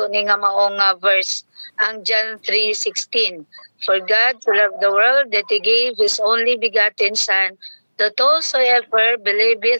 ni nga maong verse, ang John 3:16. For God to love the world that He gave His only begotten Son, that whosoever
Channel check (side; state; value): both; inverted; correlation -1.00